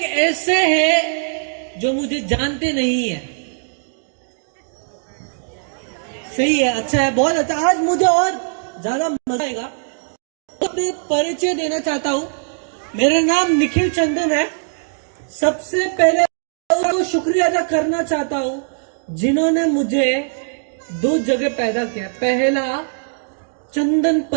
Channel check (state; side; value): silent; left; digital silence